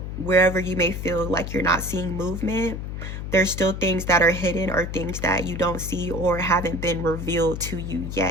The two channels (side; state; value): left; noise; hum, 6 dB below the sound